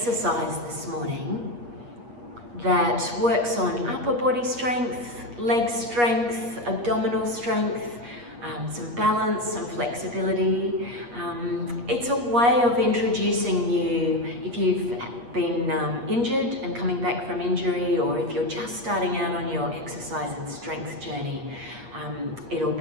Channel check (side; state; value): left; late; 8.4 ms